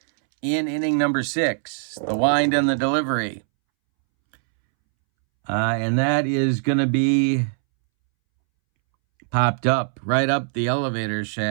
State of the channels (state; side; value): silent; left; 64 dB below the other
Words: in inning number 6. The wind and the delivery. And that is going to be popped up, right up the elevator